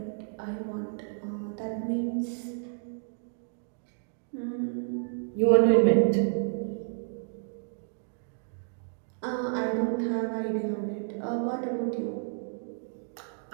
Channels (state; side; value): silent; left; digital silence